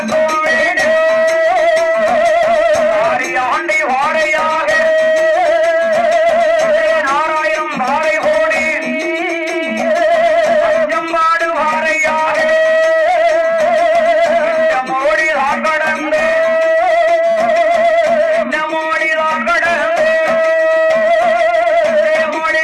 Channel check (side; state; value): both; identical; correlation 1.00